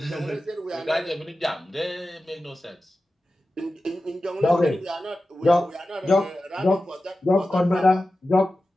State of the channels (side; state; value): both; normal; correlation 0.94